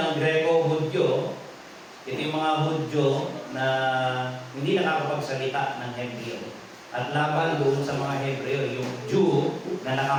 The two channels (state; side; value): identical; both; correlation 1.00